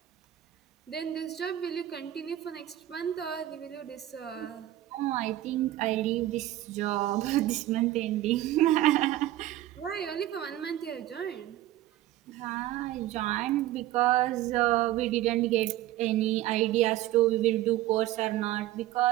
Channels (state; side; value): quieter; left; 14.4 dB